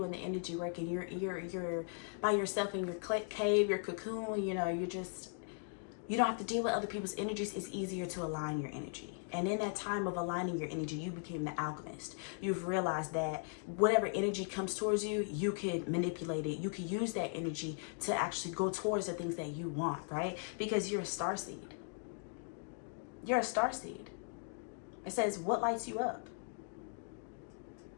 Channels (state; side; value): silent; right; 52 dB below the other